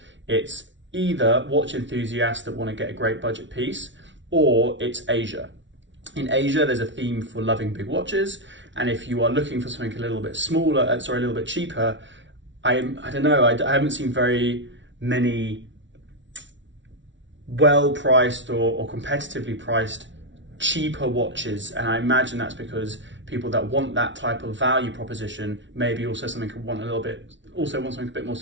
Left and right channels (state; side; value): late; left; 0.55 ms